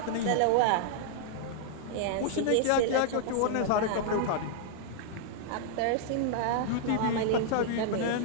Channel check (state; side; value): different; both; correlation -0.01